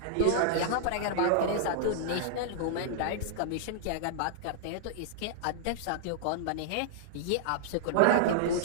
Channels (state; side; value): different; both; correlation -0.01